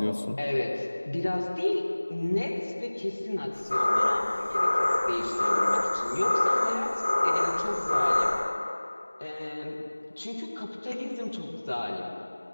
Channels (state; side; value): inverted; both; correlation -1.00